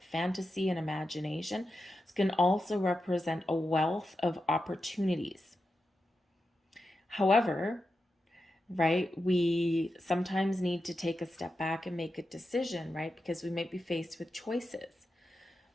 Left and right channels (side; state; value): both; normal; correlation 0.89